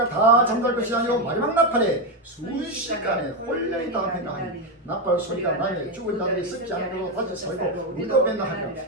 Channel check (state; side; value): normal; both; correlation 0.08